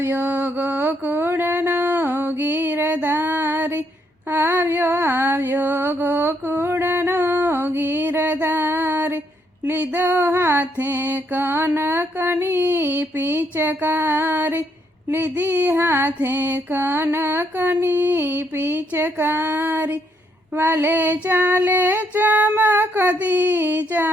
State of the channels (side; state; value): both; normal; correlation 0.74